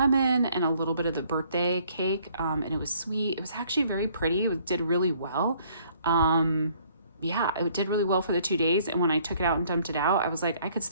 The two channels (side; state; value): both; inverted; correlation -0.62